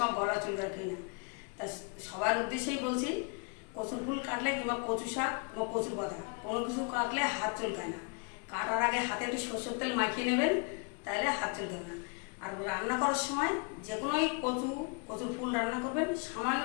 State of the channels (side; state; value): right; quieter; 35.5 dB